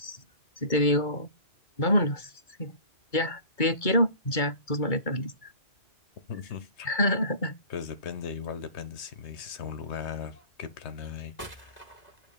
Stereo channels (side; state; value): right; late; 2.3 ms